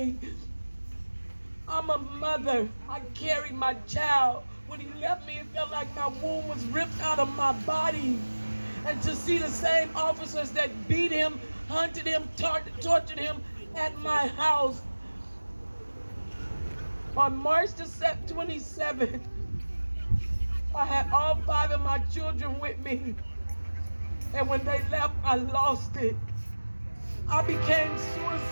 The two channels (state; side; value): inverted; both; correlation -1.00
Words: I'm a mother. I carried my child. When he left me, it felt like my womb was ripped out of my body. And to see the same officers that beat him, hunted him, tortured him at my house. On March the 27th, I had all 5 of my children with me. And when they left, I lost it. I became